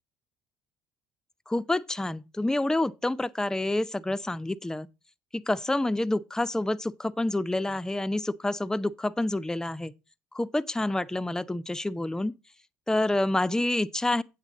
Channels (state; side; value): normal; both; correlation 0.96